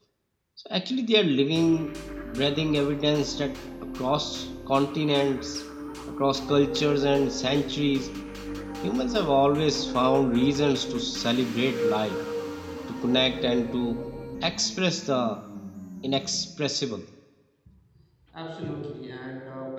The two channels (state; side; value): identical; both; correlation 1.00